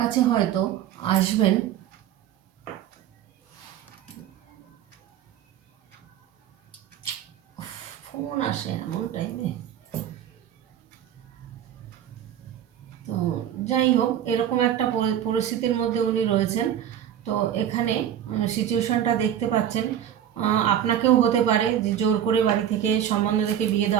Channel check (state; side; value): quieter; left; 10.2 dB